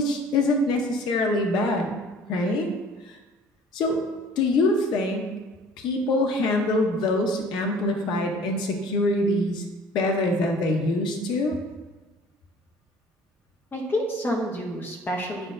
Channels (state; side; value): normal; both; correlation 0.50